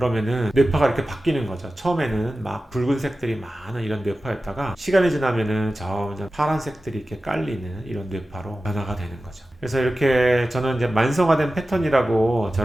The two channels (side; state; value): both; normal; correlation 0.95